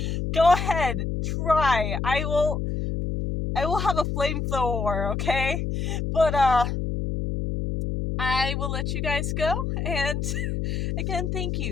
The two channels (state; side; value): noise; left; hum, 2 dB below the sound